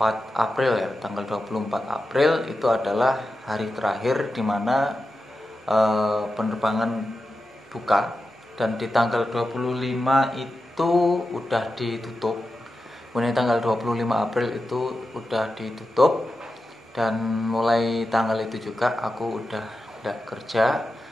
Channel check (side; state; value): both; normal; correlation 0.91